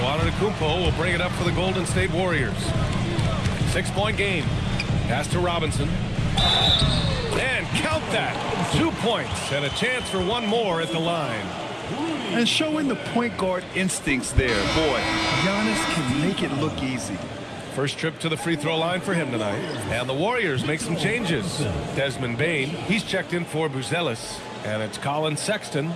Antetokounmpo will bring it up for the Golden State Warriors. 6-point game. Pass to Robinson. And count that. 2 points and a chance for one more at the line. And showing the point guard instincts there. Boy, Giannis can make it look easy. First trip to the free throw line for him tonight. And the Warriors make some changes. Desmond Bane, he's checked in for Buzelis. And it's Colin Sexton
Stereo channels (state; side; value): identical; both; correlation 1.00